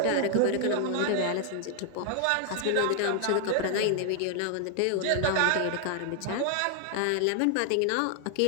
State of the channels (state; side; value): different; both; correlation 0.00